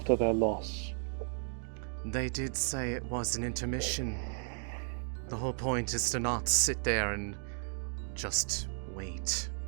their loss. They did say it was an intermission. The whole point is to not sit there and just wait.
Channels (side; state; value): left; silent; 55 dB below the other